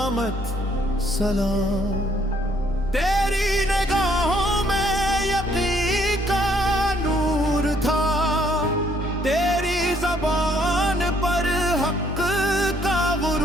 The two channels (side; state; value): both; normal; correlation 0.66